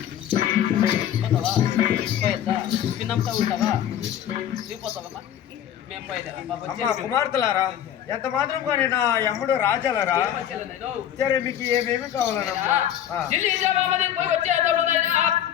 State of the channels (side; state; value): right; quieter; 10.5 dB